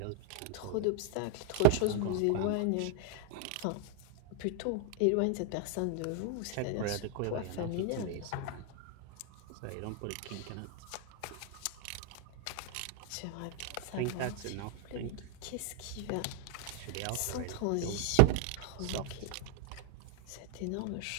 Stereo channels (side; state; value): both; different; correlation 0.00